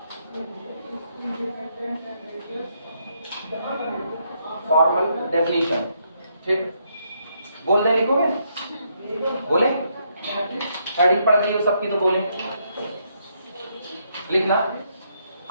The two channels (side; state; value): both; inverted; correlation -0.75